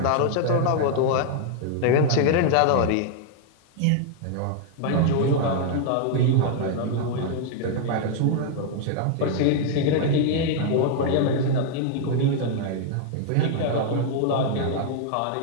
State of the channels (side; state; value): both; different; correlation 0.00